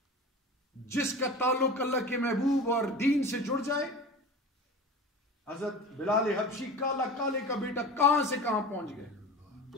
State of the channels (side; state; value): both; normal; correlation 0.34